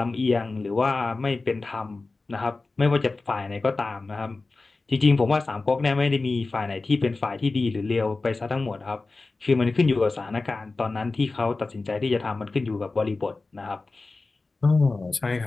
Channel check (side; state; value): right; quieter; 3.6 dB